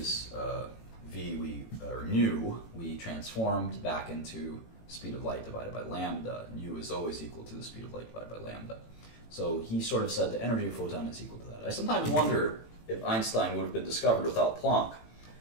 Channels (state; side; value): late; right; 18 ms